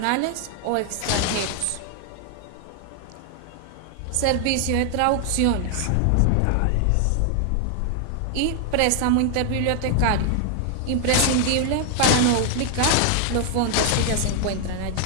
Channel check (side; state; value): both; different; correlation 0.00